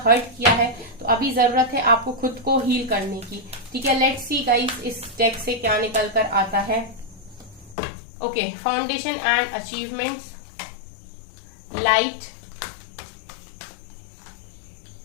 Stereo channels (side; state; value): right; drops out; at 7.8 s